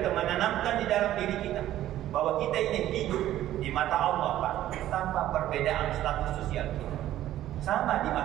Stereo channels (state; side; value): quieter; left; 13.2 dB